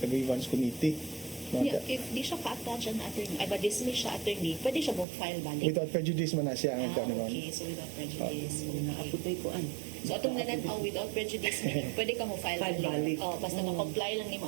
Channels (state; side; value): drops out; left; at 5.1 s